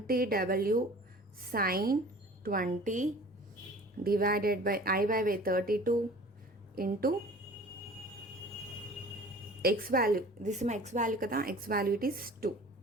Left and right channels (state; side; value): normal; both; correlation 0.44